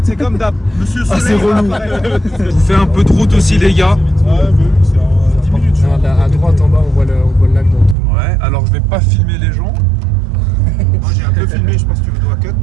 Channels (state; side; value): drops out; left; at 8.0 s